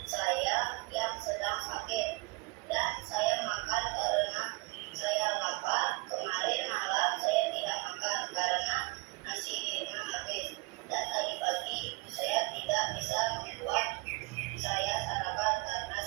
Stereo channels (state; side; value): quieter; left; 26.2 dB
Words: saya yang sedang sakit. Dan saya makan karena saya lapar. Kemarin malam saya tidak makan karena nasi di rumah habis. Dan tadi pagi ibu saya tidak bisa membuat saya sarapan karena